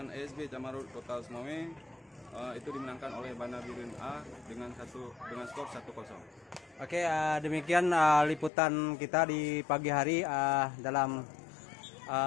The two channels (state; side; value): drops out; right; at 8.5 s